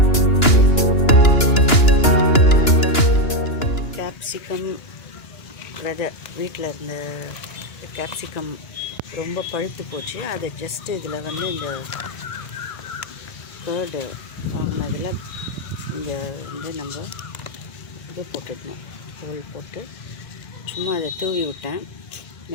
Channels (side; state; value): right; late; 2.9 ms